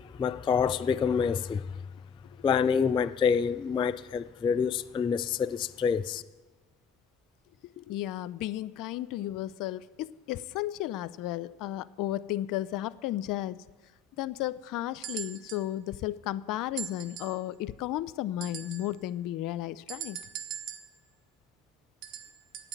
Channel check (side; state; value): right; quieter; 7.3 dB